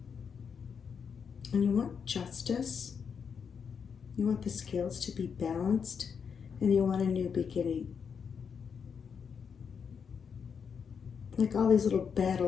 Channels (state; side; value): quieter; right; 6.6 dB